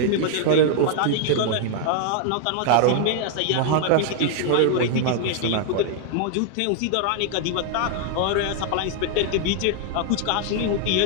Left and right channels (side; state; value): both; different; correlation 0.00